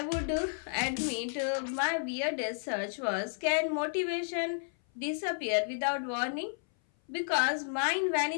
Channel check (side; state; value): right; silent; 57 dB below the other